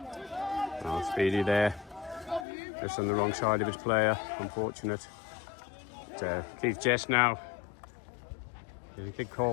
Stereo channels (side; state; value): right; drops out; at 2.5 s